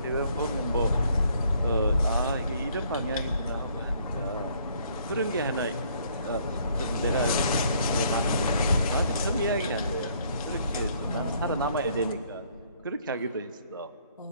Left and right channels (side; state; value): both; inverted; correlation -0.64